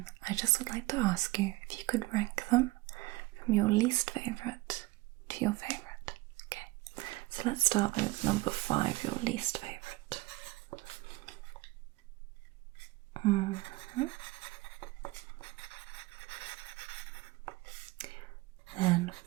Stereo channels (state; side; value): quieter; left; 20.3 dB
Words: I just would like to ask you if you could rank them from your least favourite to your favourite. Okay, so let's start with number 5, your least favourite. Then